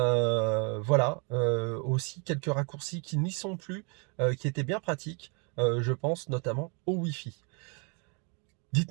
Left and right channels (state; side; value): quieter; left; 34.8 dB